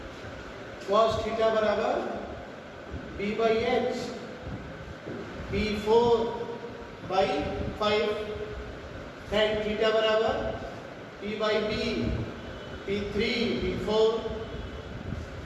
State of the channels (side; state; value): both; identical; correlation 1.00